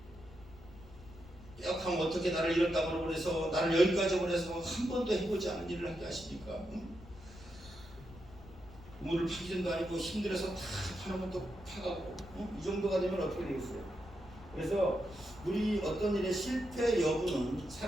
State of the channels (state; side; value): noise; left; rumble, 19 dB below the sound